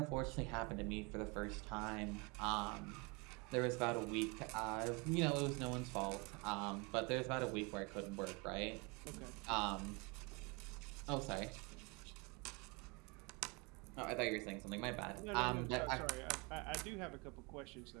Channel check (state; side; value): quieter; left; 29.1 dB